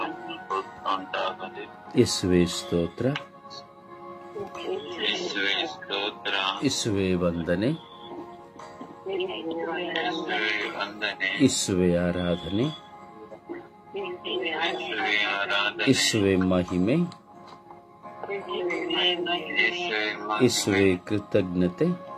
ಯೇಸುವೇ ಸ್ತೋತ್ರ, ಯೇಸುವೇ ವಂದನೆ, ಯೇಸುವೇ ಆರಾಧನೆ, ಯೇಸುವೇ ಮಹಿಮೆ, ಯೇಸುವೇ ಕೃತಜ್ಞತೆ.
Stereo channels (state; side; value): identical; both; correlation 1.00